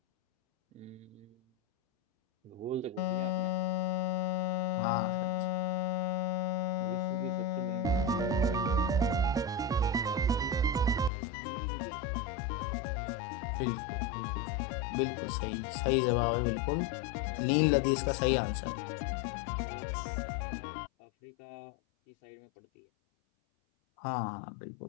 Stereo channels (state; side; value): drops out; right; at 11.1 s